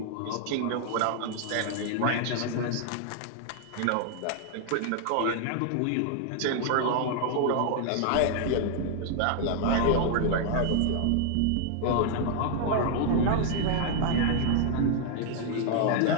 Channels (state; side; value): different; both; correlation -0.01